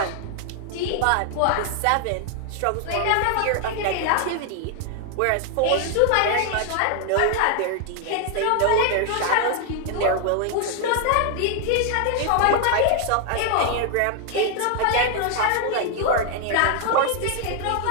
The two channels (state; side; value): different; both; correlation 0.00